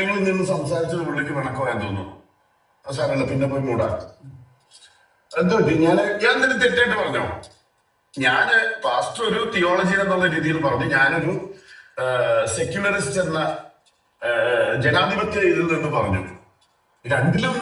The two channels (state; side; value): identical; both; correlation 1.00